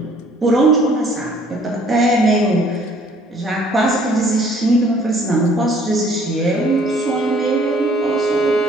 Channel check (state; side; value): normal; both; correlation 0.58